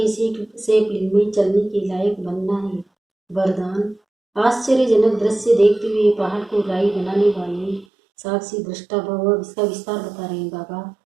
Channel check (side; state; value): left; drops out; at 7.9 s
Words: सेपलिंग में चलने के लायक बनना है। वरदान आश्चर्यजनक दृश्य देखते हुए पहाड़ को राई बनाने वाले साक्षी दृष्टा भव। इसका विस्तार बता रहे हैं बाबा।